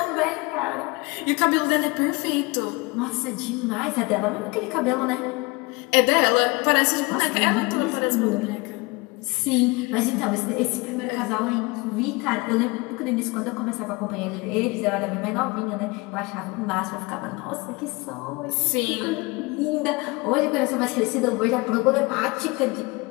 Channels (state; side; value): quieter; right; 25.2 dB